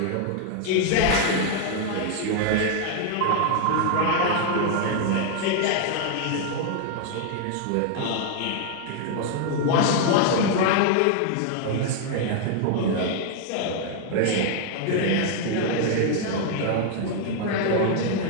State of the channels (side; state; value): both; different; correlation 0.00